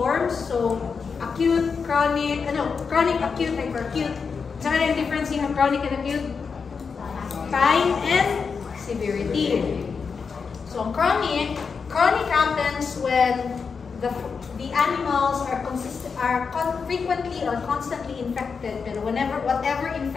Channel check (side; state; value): right; quieter; 5.5 dB